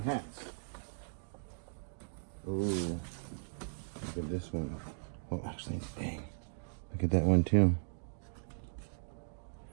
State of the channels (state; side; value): silent; left; digital silence